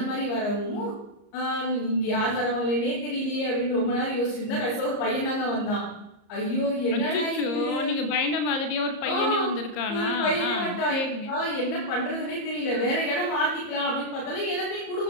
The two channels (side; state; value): right; late; 34 ms